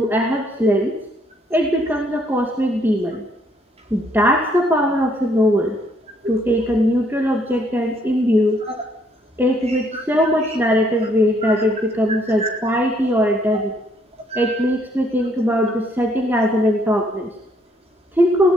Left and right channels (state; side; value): normal; both; correlation 0.68